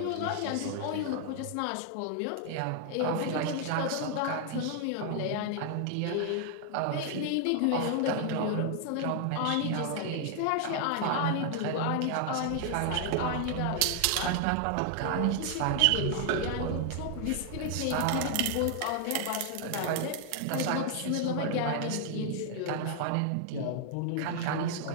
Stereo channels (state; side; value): different; both; correlation 0.00